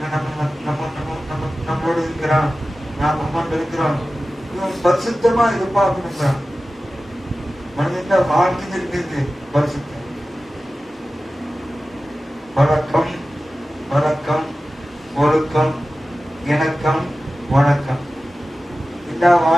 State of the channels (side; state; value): both; normal; correlation 0.95